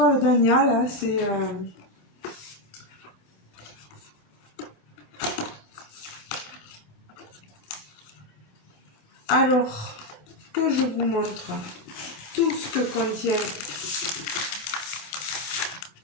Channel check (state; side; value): late; right; 28 ms